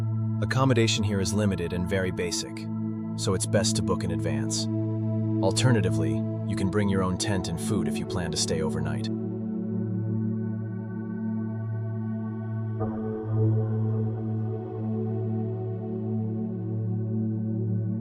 Accommodation here is limited and very basic, so it's best to book in advance. Alternatively, you can bring your own tent and food if you plan to stay overnight.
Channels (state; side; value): identical; both; correlation 1.00